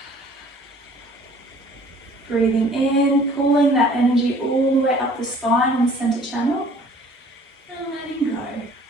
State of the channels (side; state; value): both; normal; correlation 0.53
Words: Breathing in, pulling that energy all the way up the spine and the center channel, and letting go.